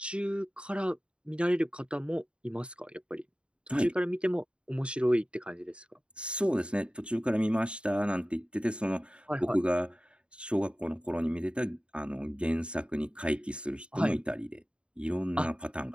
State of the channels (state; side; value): late; left; 0.055 ms